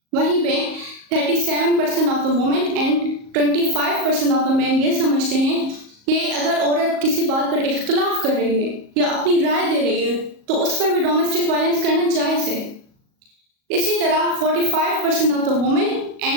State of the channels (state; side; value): late; left; 37 ms